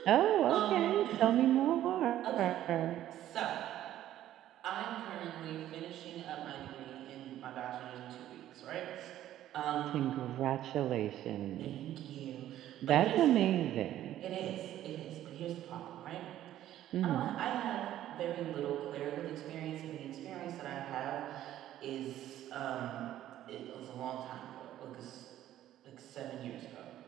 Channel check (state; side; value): quieter; left; 12.7 dB